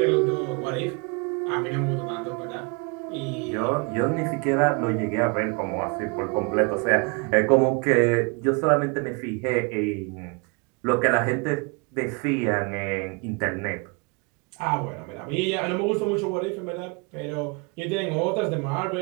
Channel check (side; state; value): left; quieter; 31.7 dB